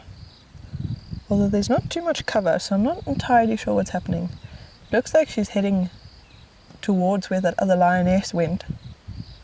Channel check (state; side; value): identical; both; correlation 1.00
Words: Although there's not too much cover, so I'm not entirely sure what's happening. Looks like she's heading towards where that other lioness went.